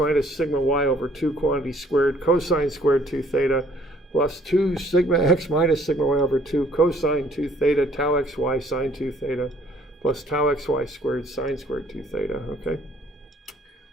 sigma y over 2 quantity squared cosine squared 2 theta plus 2 sigma x minus sigma y over 2 cosine 2 theta tau xy sine 2 theta plus tau xy squared sine squared 2 theta, okay?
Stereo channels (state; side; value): normal; both; correlation 0.60